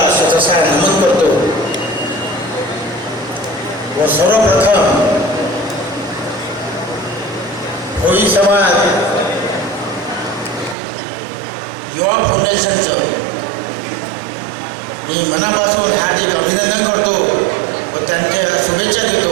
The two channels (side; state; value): left; drops out; at 10.8 s